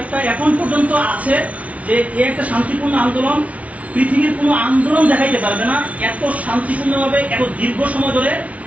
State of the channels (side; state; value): left; late; 0.067 ms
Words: এখন পর্যন্ত আছে যে এই একটা শান্তিপূর্ণ আন্দোলন, পৃথিবীর কোনো আন্দোলন দেখাইতে পারবে না এত শান্তিপূর্ণভাবে এত দীর্ঘ সময় ধরে